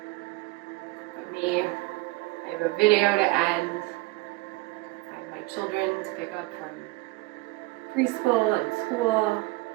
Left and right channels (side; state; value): left; quieter; 21.8 dB